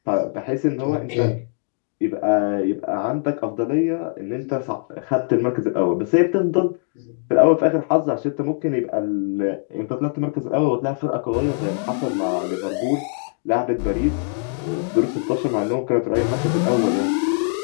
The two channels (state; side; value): silent; right; 61 dB below the other